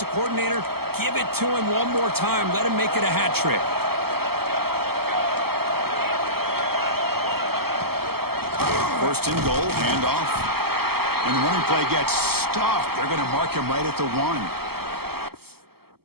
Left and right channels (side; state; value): left; late; 0.96 ms